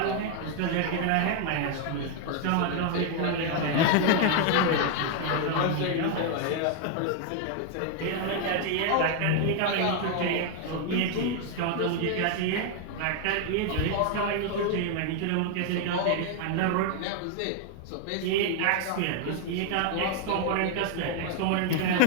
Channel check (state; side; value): different; both; correlation 0.00